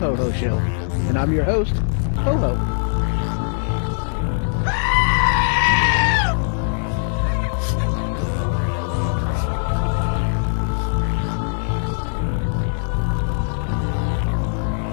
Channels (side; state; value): right; silent; digital silence